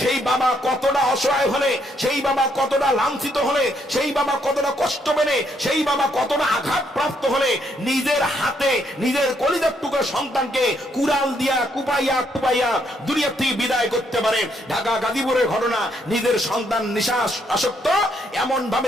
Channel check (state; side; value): normal; both; correlation 0.73